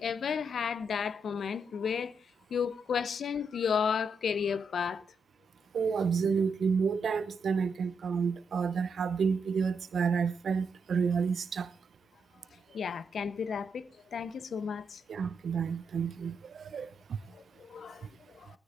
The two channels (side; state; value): both; normal; correlation 0.80